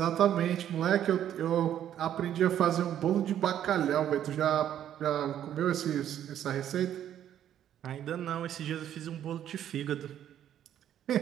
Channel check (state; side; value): quieter; left; 10.6 dB